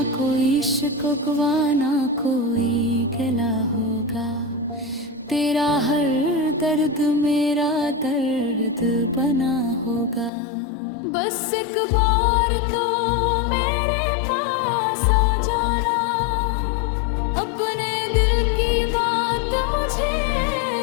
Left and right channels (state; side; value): drops out; right; at 10.3 s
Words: कोई शिकवा ना कोई गिला होगा, तेरा हर दर्द मेरा दर्द बना होगा। बस एक बार तो मेरे पास आ जाना, अपने दिल की बात मुझे